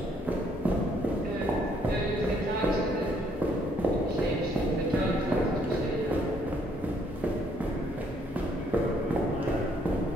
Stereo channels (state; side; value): normal; both; correlation 0.68